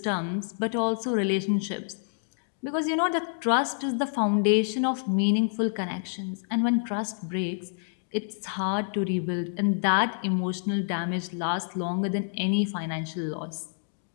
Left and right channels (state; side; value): silent; right; digital silence